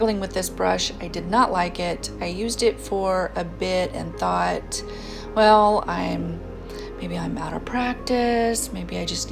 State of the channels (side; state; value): both; identical; correlation 1.00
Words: with this brush. I did not like it. I used it for a bit and thought, well, maybe I'm out of practice, maybe I just